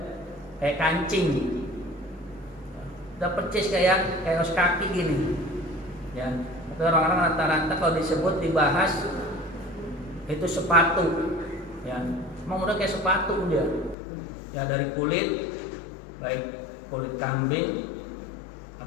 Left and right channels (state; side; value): drops out; right; at 14.0 s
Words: kayak kancing, udah persis kayak kaos kaki gini, ya. Tapi orang-orang rata-rata kalau disebut dibahas itu sepatu, ya. Emang udah kayak sepatu dia, ya, dari kulit, baik kulit kambing